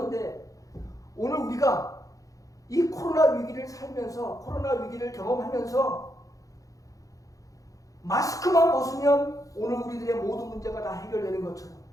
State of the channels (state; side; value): late; right; 0.17 ms